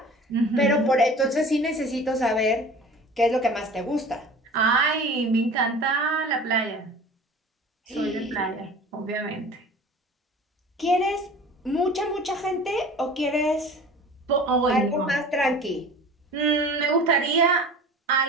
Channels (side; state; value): both; normal; correlation 0.41